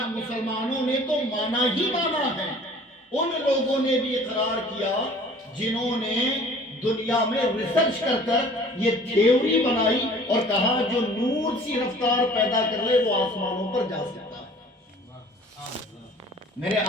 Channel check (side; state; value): both; normal; correlation 0.50